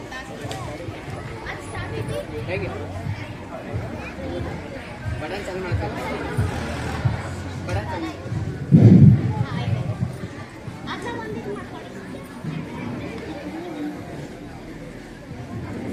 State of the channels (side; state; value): both; identical; correlation 1.00